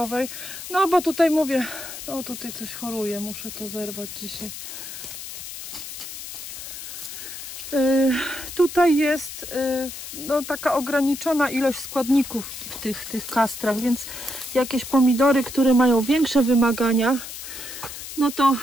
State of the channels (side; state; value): left; noise; hiss, 10 dB below the sound